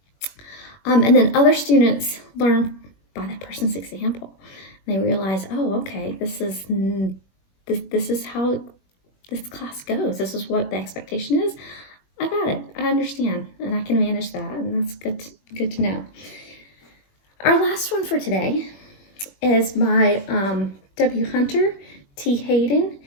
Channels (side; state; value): right; late; 21 ms